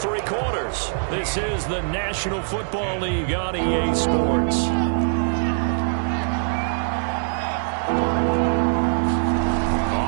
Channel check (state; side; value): silent; left; digital silence